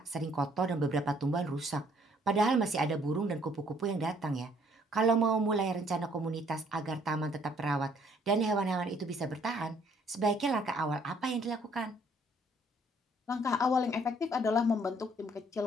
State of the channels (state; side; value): normal; both; correlation 0.63